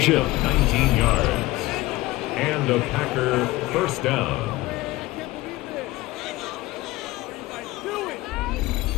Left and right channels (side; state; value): right; quieter; 19.2 dB